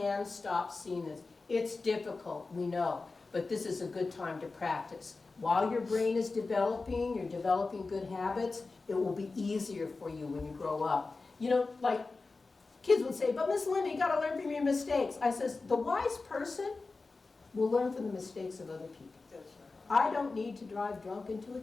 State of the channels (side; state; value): right; quieter; 3.8 dB